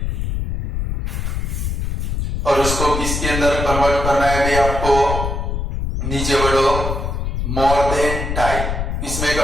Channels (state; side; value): noise; left; rumble, 2 dB below the sound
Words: और उसको किसके अंदर कन्वर्ट करना है भाई आपको, नीचे बढ़ो, मोर देन टाइप, इसमें